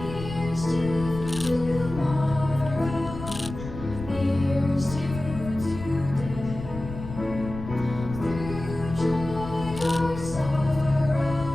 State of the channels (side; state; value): left; noise; rumble, 10 dB below the sound